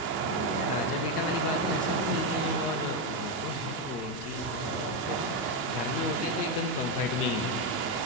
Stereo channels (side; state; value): both; normal; correlation 0.07